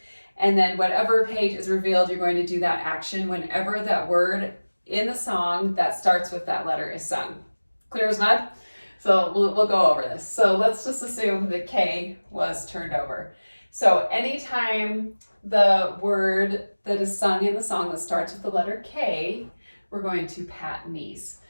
And then whatever page is revealed, you're going to do that action whenever that word in the song that starts with that letter is sung. Clear as mud? So we'll go over this. So let's just assume that K was turned over. So anytime the word that is sung in the song that starts with the letter K, we're going to pat knees.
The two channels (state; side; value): inverted; both; correlation -1.00